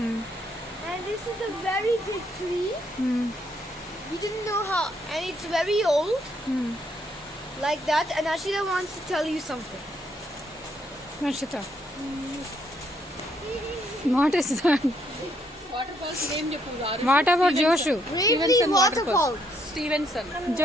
this is a very big tree. We didn't know how, and it's very old. Like that. And Ashita wants to tell you something. Ashita. What is that? Waterfalls name Japur. What about Joshu? Gravely waterfalls. Stevenson.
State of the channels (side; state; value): both; normal; correlation 0.72